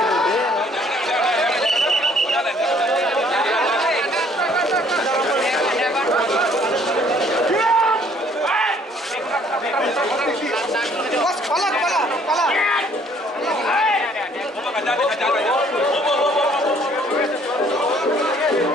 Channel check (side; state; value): both; normal; correlation 0.60